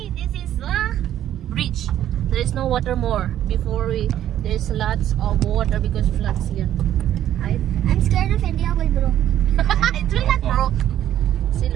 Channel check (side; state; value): left; quieter; 11.6 dB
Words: this is the bridge. There is no water more. Before there's lots of water because floods here. I'm scared of India will broke. It's really not broke. See,